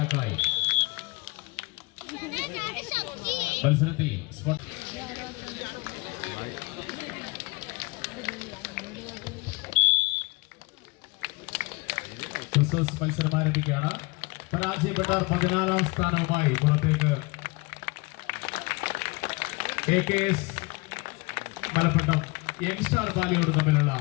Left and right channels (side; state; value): right; quieter; 26.6 dB